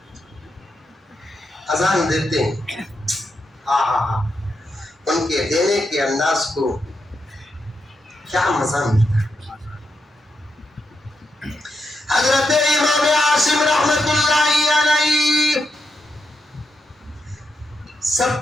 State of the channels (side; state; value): both; normal; correlation 0.84